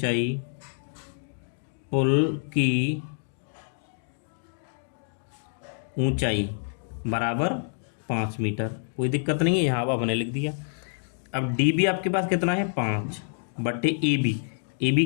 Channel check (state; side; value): silent; right; digital silence